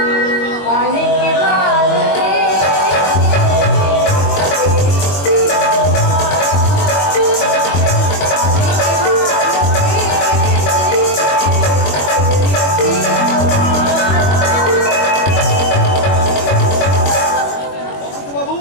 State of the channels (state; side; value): late; right; 22 ms